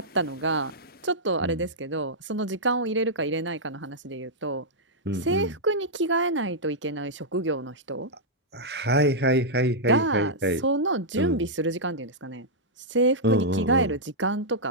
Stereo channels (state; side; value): normal; both; correlation -0.08